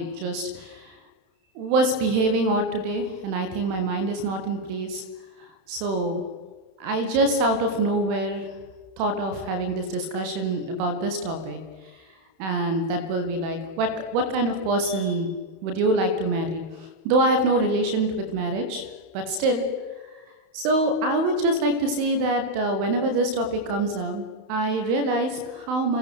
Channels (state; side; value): late; left; 31 ms